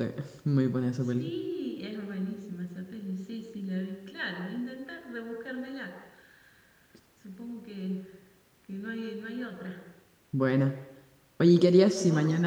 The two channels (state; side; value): identical; both; correlation 1.00